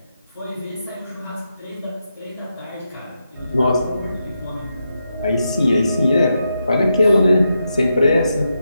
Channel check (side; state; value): both; inverted; correlation -0.85